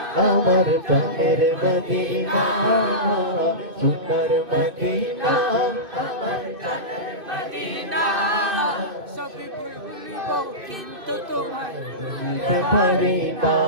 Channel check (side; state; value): left; late; 2.6 ms